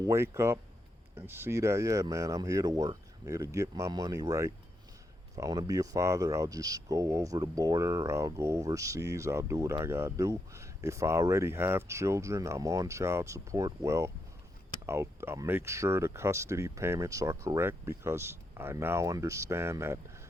wake up and see that, yeah, man, I'm here to work. I'm here to get my money right. If I want to be a father, I'll just go over the border. I'll go overseas. I'll do what I gotta do. If I already have children, I'm on child support. Well, I'll make sure the custody payments are correct, because I now understand that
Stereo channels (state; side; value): normal; both; correlation 0.82